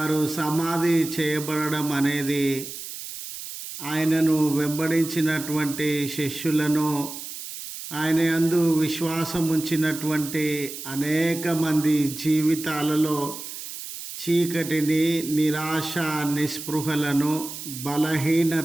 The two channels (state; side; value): noise; right; hiss, 10 dB below the sound